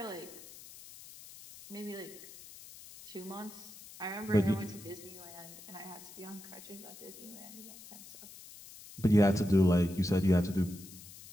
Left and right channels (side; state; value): left; noise; hiss, 17 dB below the sound